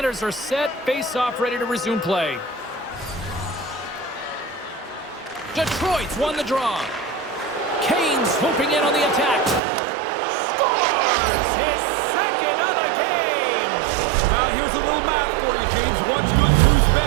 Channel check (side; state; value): left; drops out; at 9.6 s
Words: are set, face-off ready to resume play. Detroit's won the draw. Kane swooping in on the attack. Scores his second of the game. Now here's a little math for you, James. One's good, two's